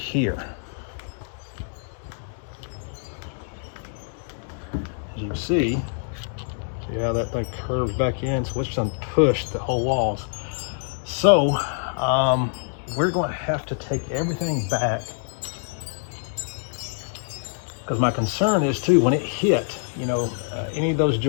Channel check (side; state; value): right; silent; digital silence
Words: As you can see how that thing curves back in, so it's done pushed the whole walls. So we're going to have to take everything back, because my concern is too, when it hit, any of those